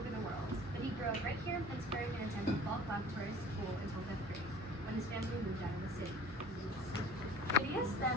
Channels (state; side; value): normal; both; correlation 0.45